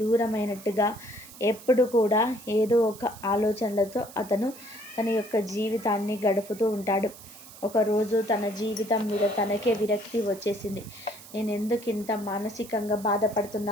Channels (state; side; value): noise; right; hiss, 18 dB below the sound